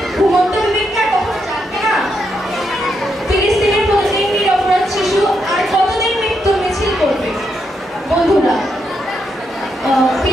ঘুমন্ত বিবেকটা কখন জানবে না? ফিলিস্তিনের প্রতিদিন নিরপরাধ শিশু আর কতদিন মৃত্যুর মিছিল করবে? বন্ধুরা,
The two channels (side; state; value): both; normal; correlation 0.81